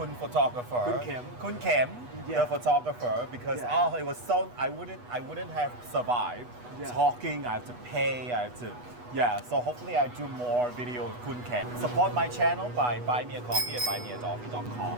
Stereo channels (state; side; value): late; left; 8.2 ms